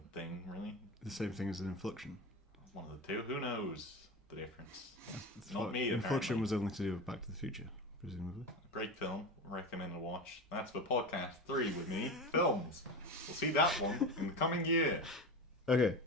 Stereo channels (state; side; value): normal; both; correlation 0.25